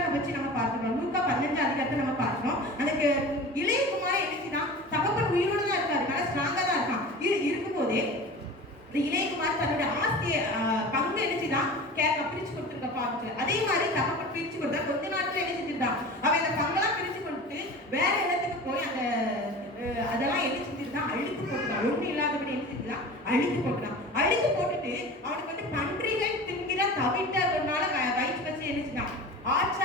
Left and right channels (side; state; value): both; normal; correlation 0.36